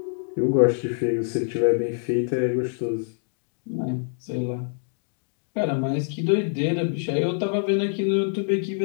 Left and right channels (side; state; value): right; silent; digital silence